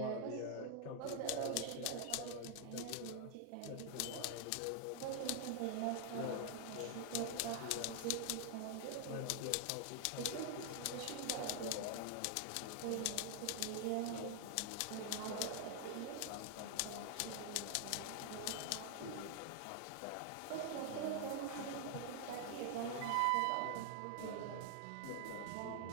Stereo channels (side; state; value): both; different; correlation 0.00